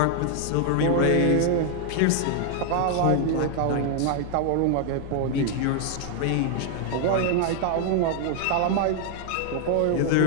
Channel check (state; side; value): different; both; correlation 0.00